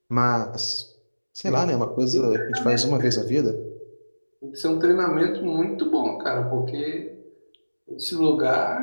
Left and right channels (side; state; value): both; inverted; correlation -1.00